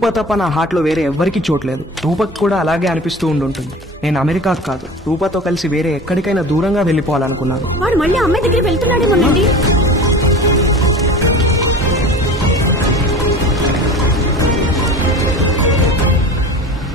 తప్ప నా హార్ట్లో వేరే ఎవ్వరికీ చోట్లేదు. రూపకు కూడా అలాగే అనిపిస్తూ ఉండుంటుంది. నేను అమెరికాకు కాదు, రూపతో కలిసి వేరే ఎక్కడికైనా దూరంగా వెళ్ళిపోవాలనుకున్నాను. వాడు మళ్ళీ అమ్మాయి దగ్గరికి వెళ్తున్నాడేమోనండి.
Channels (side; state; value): both; normal; correlation 0.37